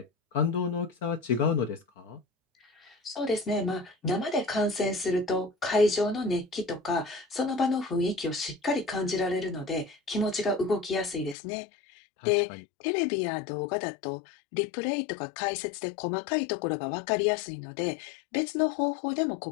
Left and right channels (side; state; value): right; drops out; at 11.4 s